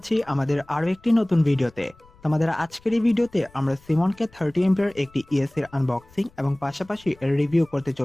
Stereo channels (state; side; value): noise; left; rumble, 27 dB below the sound